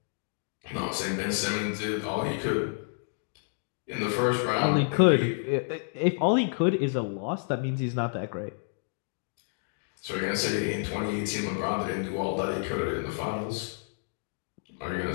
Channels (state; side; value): silent; right; digital silence